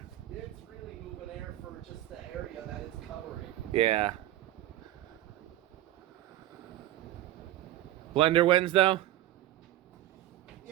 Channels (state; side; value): quieter; left; 14.1 dB